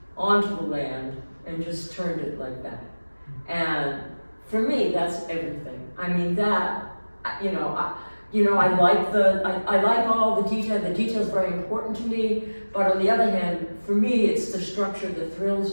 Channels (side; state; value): both; inverted; correlation -1.00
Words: onto the land and just turned it like that. And for me, that's everything. I mean, that, I like all the detail. The detail is very important to me. But on the other hand, for me, it's the structure that